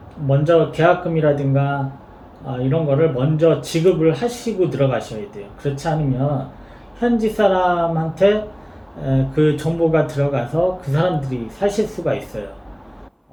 먼저 계약금이라든가 이런 거를 먼저 지급을 하시고 들어가셔야 돼요. 그렇지 않으면 현지 사람한테 그 정보가 들어가서 그 사람들이 사실 수가 있어요.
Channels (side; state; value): both; identical; correlation 1.00